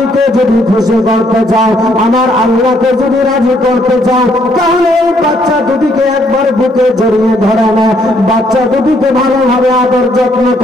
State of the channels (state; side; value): normal; both; correlation 0.69